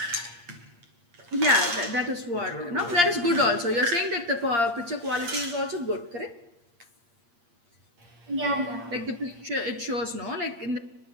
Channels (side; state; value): left; late; 8.6 ms